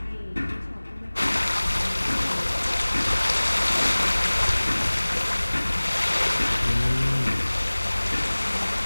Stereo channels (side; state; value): both; inverted; correlation -1.00